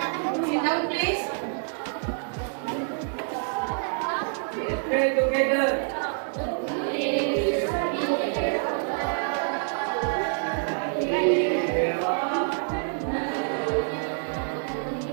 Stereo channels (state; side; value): silent; left; 60 dB below the other